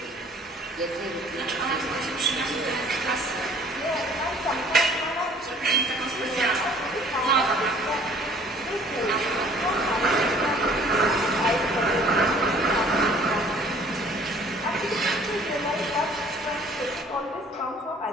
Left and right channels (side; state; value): both; normal; correlation 0.54